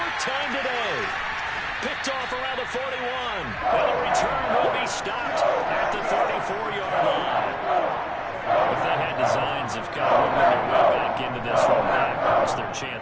time today. Picked off around the 41. And the return will be stopped at the 34-yard line. If they had designs of kind of moving their way back into this one, that hurts their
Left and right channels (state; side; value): identical; both; correlation 1.00